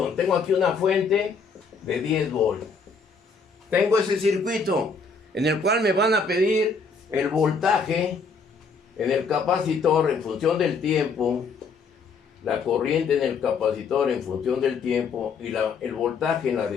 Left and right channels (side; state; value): right; quieter; 4.8 dB